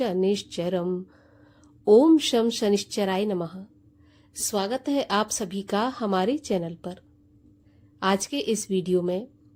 ओम शम शनिश्चराय नमः। स्वागत है आप सभी का हमारे चैनल पर। आज के इस वीडियो में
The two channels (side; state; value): both; identical; correlation 1.00